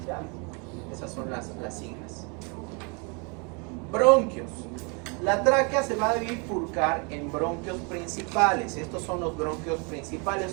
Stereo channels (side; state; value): left; quieter; 33.6 dB